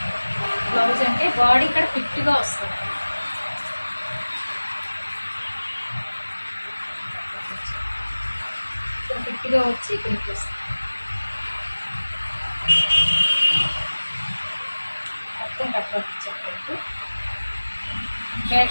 బ్లౌజ్ అంటే బాడీ ఇక్కడ ఫిట్గా వస్తుంది. ఇక్కడ ఫిట్గా వచ్చి ఇక్కడికి వస్తుంది. మొత్తం కట్ వర్క్ ఇచ్చేటట్టు.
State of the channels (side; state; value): both; inverted; correlation -1.00